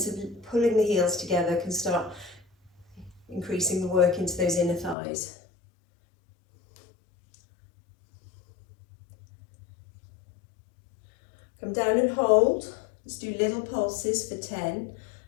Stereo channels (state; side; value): drops out; right; at 5.0 s